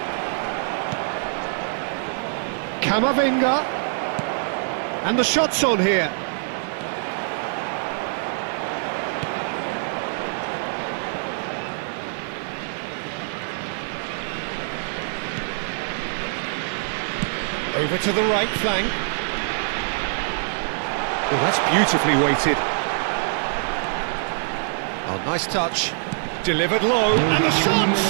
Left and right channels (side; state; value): left; silent; 55 dB below the other